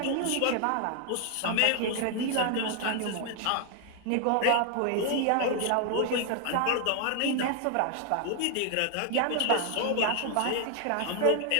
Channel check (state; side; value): different; both; correlation 0.00